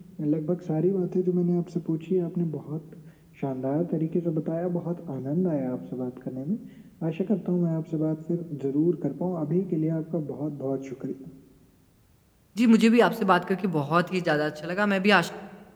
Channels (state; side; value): identical; both; correlation 1.00